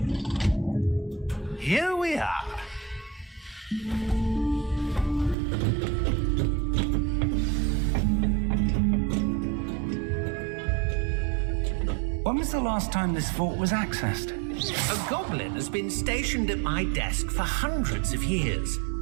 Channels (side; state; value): left; drops out; at 5.4 s